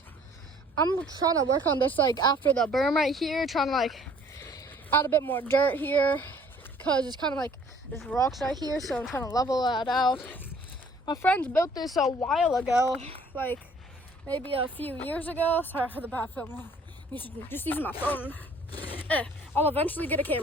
I'm trying to work on this like after the berm right here, trying to like add a bit more dirt here, because it's kind of like there's rocks right here, so I'm trying to level that out. My friends built this a while ago, like maybe a few years ago. Sorry for the bad filming. Just using my phone. I'll eventually get a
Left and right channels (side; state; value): both; normal; correlation 0.56